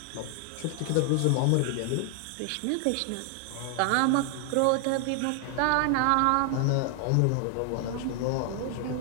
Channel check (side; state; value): both; different; correlation 0.00